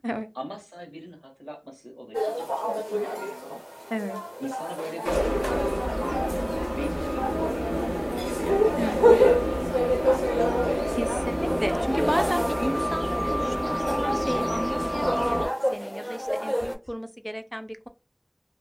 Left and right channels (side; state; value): both; identical; correlation 1.00